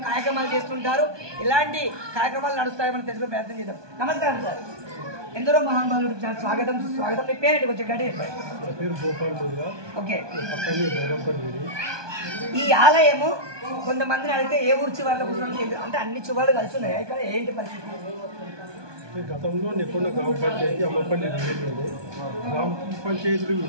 కార్యక్రమాలు చేస్తుంటారు, ఇలాంటి కార్యక్రమాలు నడుస్తాయో మనం తెలుసుకునే ప్రయత్నం చేద్దాం. నమస్కారం సార్. ఎందరో మహానుభావులు స్వాగతం సుస్వాగతం. మీ పేరేంటి కొంచెం గట్టి చెప్పండి. ఓకే. ఈ ఆలయము కొంతమందిని అడిగితే ఏ ఊరు చివర్లో కూర్చొని అంటే అన్ని చివర్లు కలిసి ఉన్నాయి. ఇక్కడ ఏంటి పరిస్థితి? గతంలో నెక్కొండ గ్రామ పంచాయతీ అమ్మపల్లి డివిజన్లో గ్రామ పంచాయతీలు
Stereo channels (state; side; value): late; left; 1.2 ms